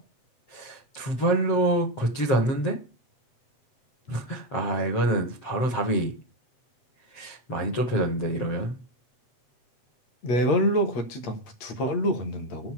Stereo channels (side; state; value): right; late; 7.6 ms